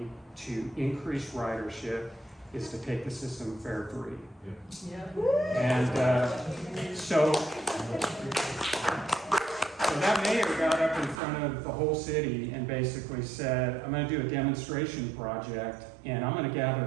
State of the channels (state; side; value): drops out; left; at 11.2 s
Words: to increase ridership is to take the system fare free. And so that mayor got up in front of the whole city and basically said, I'm going to do a demonstration project, and I'm going to gather